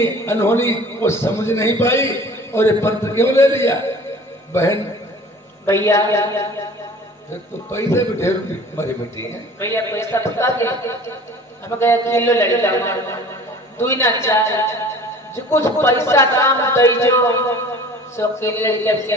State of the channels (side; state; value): both; normal; correlation 0.45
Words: अनहोनी वो समझ नहीं पाई और ये पत्र क्यों ले लिया बहन? भैया फिर तो पैसे भी ढेर मरी मिट्टी है। भैया पैसा बता दे, हम गए किलो लड़का दुई ना चार जो कुछ पैसा काम दई जो सो किलो लड़का के